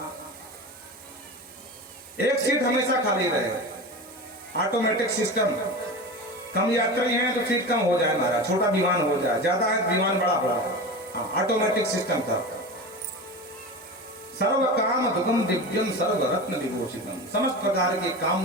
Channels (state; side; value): normal; both; correlation 0.28